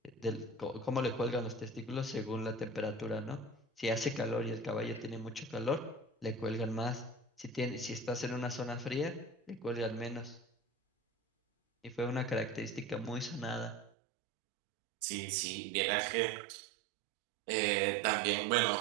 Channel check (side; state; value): left; drops out; at 13.9 s